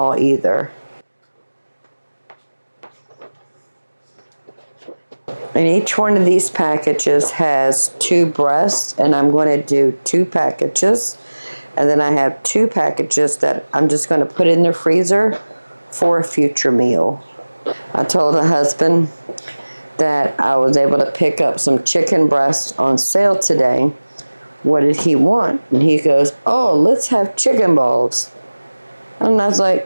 either. And each one of these packages has 2 breasts, and I'm going to do 2 packages. And then I have 2 packages that I'm just going to put in the freezer for a future meal. I told the husband that I was able to pick up some chicken breasts on sale today. What did he want? And he goes, oh, let's have chicken balls. And I was like,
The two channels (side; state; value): both; inverted; correlation -1.00